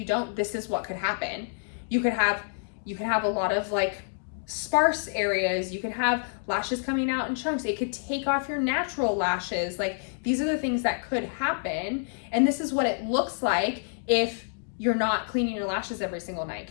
don't, this is what could happen. You could have a lot of like sparse areas. You could have lashes coming out in chunks. It could take off your natural lashes. Like these are the things that could happen. And this is what it looks like if you're not cleaning your lashes every single night,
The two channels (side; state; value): right; silent; digital silence